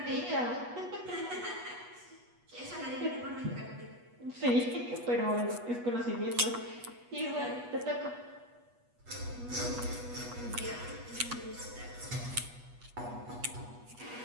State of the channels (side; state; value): left; late; 8.2 ms